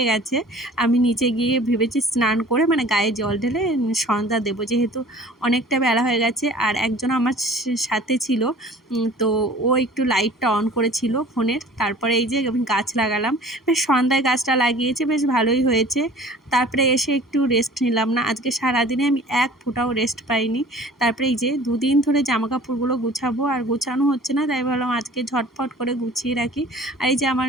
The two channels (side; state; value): both; normal; correlation 0.46